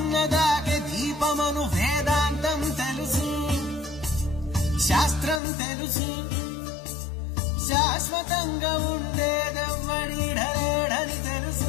దీపమను వేదాంతం తెలుసు శాస్త్రం తెలుసు శాశ్వతంగా ఉండేదెవ్వడిడలేడని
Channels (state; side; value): drops out; right; at 5.4 s